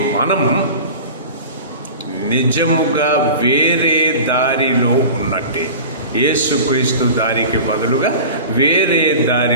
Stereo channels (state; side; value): inverted; both; correlation -0.36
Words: మనం నిజముగా వేరే దారిలో ఉన్నట్టే. యేసుక్రీస్తు దారికి బదులుగా వేరే